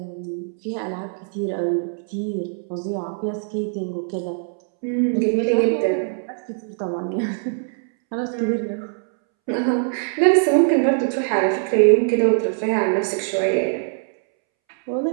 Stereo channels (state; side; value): silent; left; 64 dB below the other